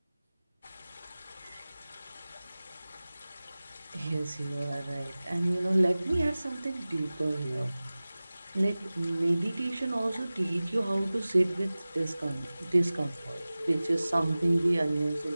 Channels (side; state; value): both; inverted; correlation -0.98